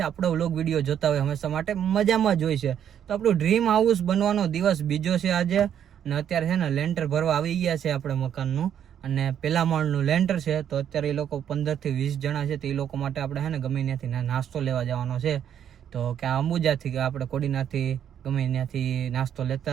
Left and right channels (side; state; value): left; quieter; 9.4 dB